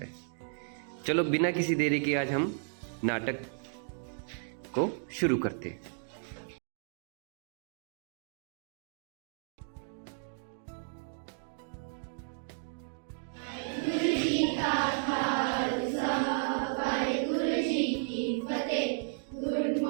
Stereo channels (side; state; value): left; silent; digital silence